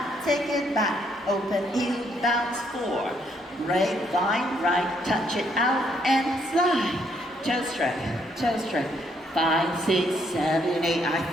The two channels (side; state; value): both; normal; correlation 0.71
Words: open heel bounce 4. Right, line, right, touch it out and slide. Toe straight. 5, 6, 7, 8. I